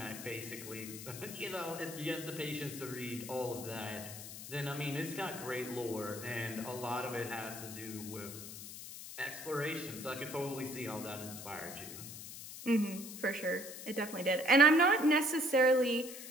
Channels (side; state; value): left; noise; hiss, 11 dB below the sound